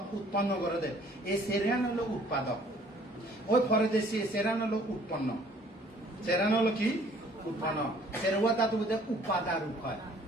উৎপন্ন করে দেয় এই সেরিয়ান হলো উৎপাদক ওই পরদেশি সেরান হলো উৎপন্ন সেরান হলো কি উৎপন্ন সেরুয়া তা তো উপাদা রূপ হয়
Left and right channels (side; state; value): both; normal; correlation 0.57